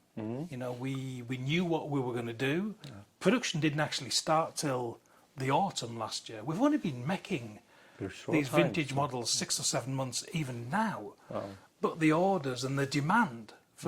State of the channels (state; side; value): identical; both; correlation 1.00